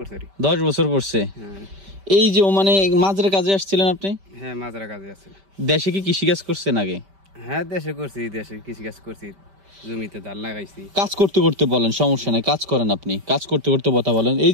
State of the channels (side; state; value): left; late; 5.1 ms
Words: 10 বছর পড়ছে। এই যে ওমানে মাজরা কাজে আসছিলেন আপনি? হ্যাঁ, মাজরা কাজে আছি। দেশে কি কৃষিকাজ করছেন আগে? হ্যাঁ, দেশে করছি, দেশে কৃষিকাজ করছি, জমিতে ধান লাগাইছি। কাজ করতে করতে বলেন, সমস্যা নাই, কাজ করেন আপনি। কাজ করতে করতে কথা বলেন। এই